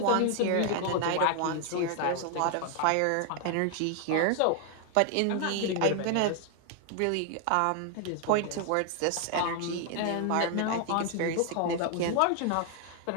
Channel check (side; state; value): both; different; correlation 0.00